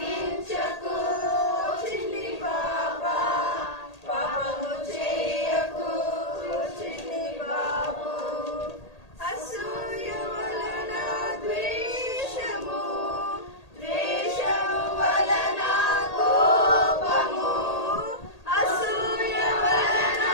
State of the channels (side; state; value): right; late; 1.8 ms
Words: చిన్ని పాప పాపము చేయకు చిన్ని బాబు. అసూయ వలన ద్వేషము, ద్వేషము వలన కోపము, అసూయ వలన